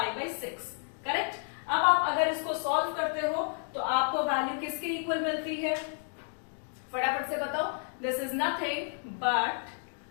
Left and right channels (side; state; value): right; silent; 57 dB below the other